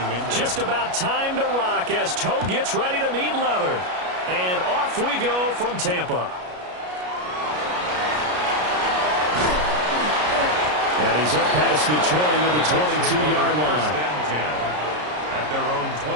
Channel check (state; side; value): late; left; 33 ms